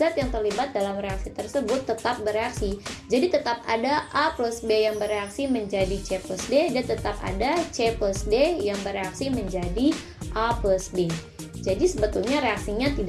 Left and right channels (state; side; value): identical; both; correlation 1.00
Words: yang terlibat dalam reaksi tersebut tetap bereaksi. Jadi tetap ada A plus B yang bereaksi menjadi C plus D, dan tetap ada C plus D yang bereaksi menjadi A plus B. Jadi sebetulnya reaksinya